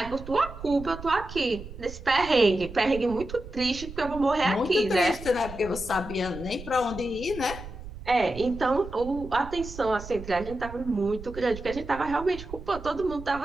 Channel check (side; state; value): right; noise; rumble, 13 dB below the sound